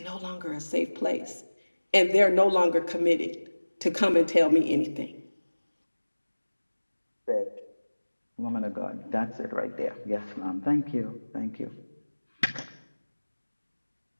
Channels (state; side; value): inverted; both; correlation -1.00